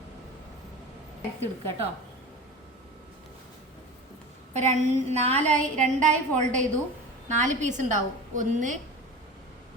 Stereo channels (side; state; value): both; normal; correlation 0.32